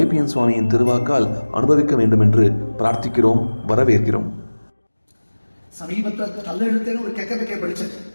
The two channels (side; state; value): both; inverted; correlation -1.00